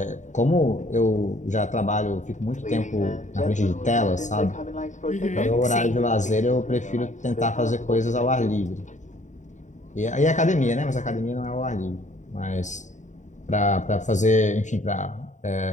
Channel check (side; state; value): right; late; 0.35 ms